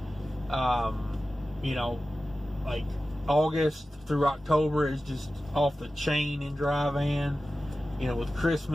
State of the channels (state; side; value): normal; both; correlation 0.94